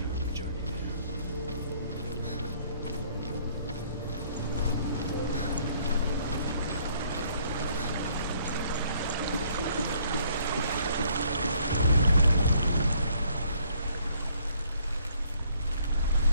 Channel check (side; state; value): both; inverted; correlation -0.63